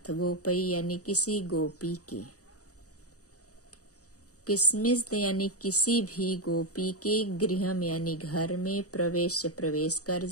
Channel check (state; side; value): late; right; 0.66 ms